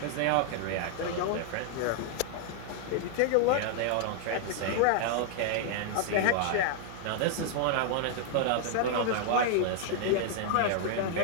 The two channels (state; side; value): different; both; correlation -0.01